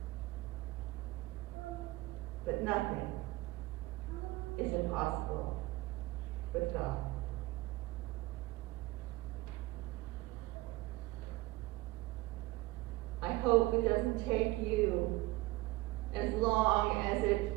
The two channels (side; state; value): left; quieter; 19.8 dB